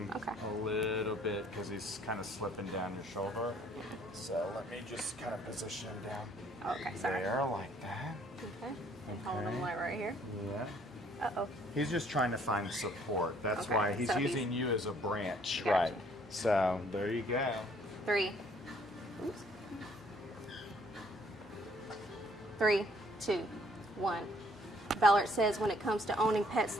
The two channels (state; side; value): normal; both; correlation 0.62